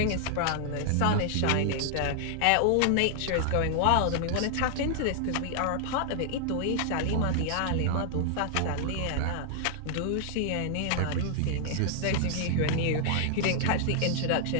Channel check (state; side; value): different; both; correlation 0.00